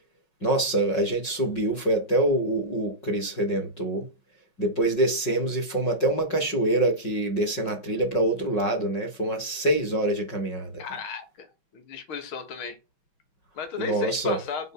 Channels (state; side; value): late; right; 5.5 ms